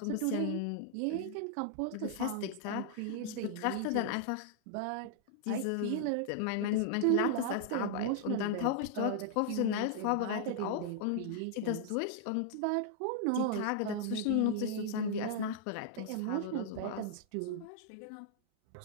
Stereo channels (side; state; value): both; different; correlation -0.01